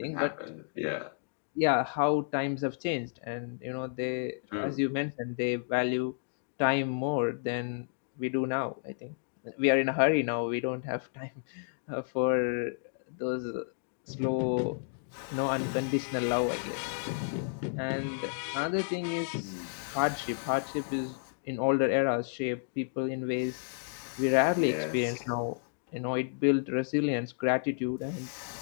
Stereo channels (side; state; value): right; silent; digital silence